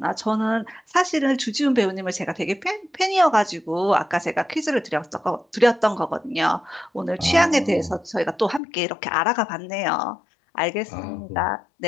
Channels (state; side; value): drops out; right; at 8.6 s